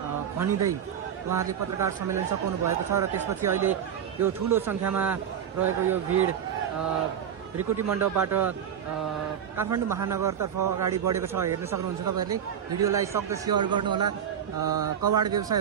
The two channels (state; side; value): quieter; left; 8.8 dB